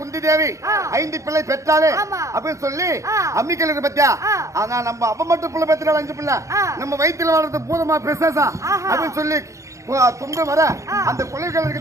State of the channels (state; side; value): late; left; 0.15 ms